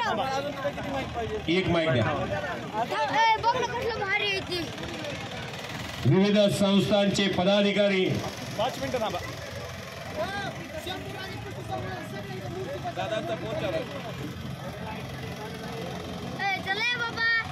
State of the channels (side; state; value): both; identical; correlation 1.00